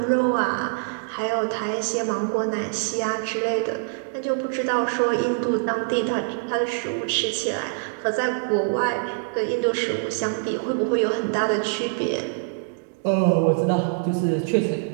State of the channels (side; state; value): left; silent; digital silence